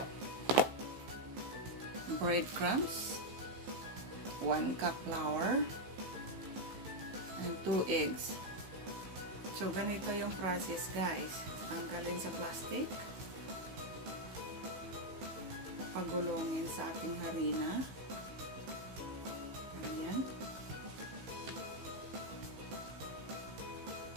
Breadcrumbs, 1 cup flour, and 2 eggs. So, ganito yung process, guys. Tanggalin sa plastic. Pagulongin sa ating harina. Ayan.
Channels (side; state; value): left; late; 15 ms